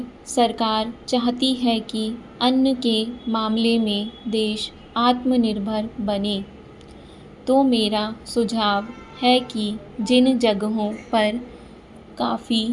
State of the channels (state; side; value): identical; both; correlation 1.00